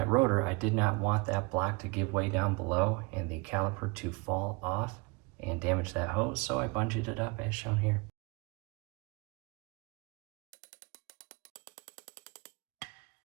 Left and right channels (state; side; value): quieter; left; 28.0 dB